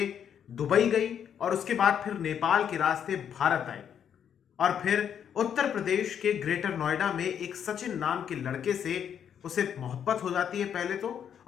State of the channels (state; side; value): quieter; right; 8.6 dB